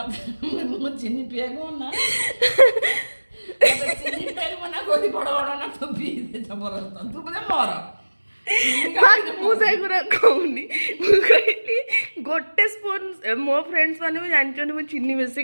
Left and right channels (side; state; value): both; inverted; correlation -1.00